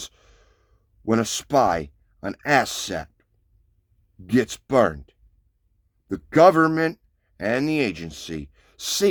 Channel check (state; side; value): identical; both; correlation 1.00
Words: when a spy, an asset, gets burned, the government and the agency